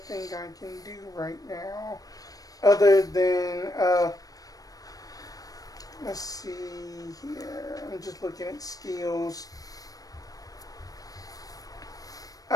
I can do right now, other than let's see here. I'm just looking at skills.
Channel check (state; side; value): late; right; 0.18 ms